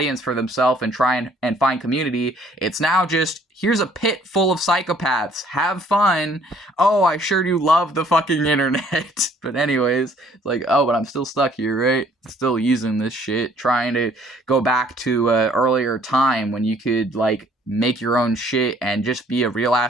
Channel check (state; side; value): normal; both; correlation 0.60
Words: for themselves and try and find community. It's now just, here's a pit full of psychopaths. Have fun. Oh, I sure do love the fucking internet. But anyways, it's like, oh, but I'm still stuck here, right? Still using this shit, trying to go back to an earlier time when you could, like, make your own shit and just be a real